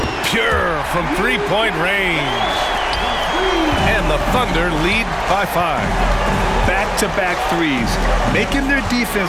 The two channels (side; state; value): both; identical; correlation 1.00